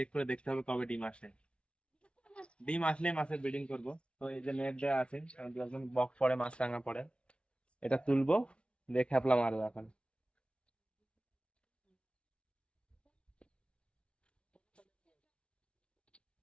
করে দেখতে হবে কবে ডিম আসে। ডিম আসলে মাছের ব্রিডিং করব। তো এই যে নেট দেওয়া আছে, কারণ যখন বক পড়ে, মাছ রাঙা পড়ে, এটা তুলবো, দিয়ে খেপলা মারবো এখন।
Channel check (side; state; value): right; late; 0.059 ms